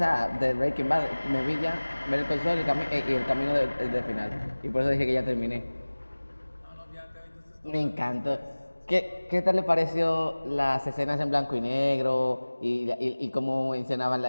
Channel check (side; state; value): both; inverted; correlation -1.00